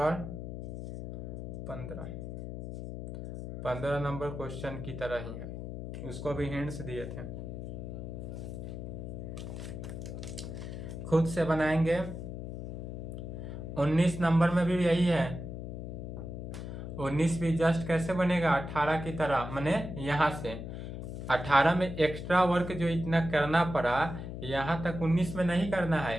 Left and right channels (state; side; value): noise; left; hum, 7 dB below the sound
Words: 15 number question की तरह ही है, उसको भी हिंट्स दिए थे, खुद से बनाएंगे। 19 नंबर में भी यही है, 19 भी जस्ट कैसे बनेगा 18 की तरह, माने यहाँ से 18 में एक्स्ट्रा वर्क जो इतना करना पड़ा यहाँ तक 19 में नहीं करना